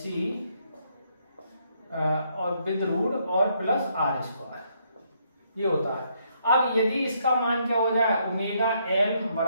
और विद रूट और प्लस आर स्क्वायर, ये होता है। अब यदि इसका मान क्या हो जाए ओमेगा एल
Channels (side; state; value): both; inverted; correlation -0.73